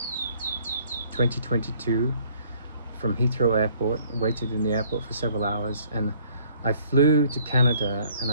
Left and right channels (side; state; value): both; inverted; correlation -0.60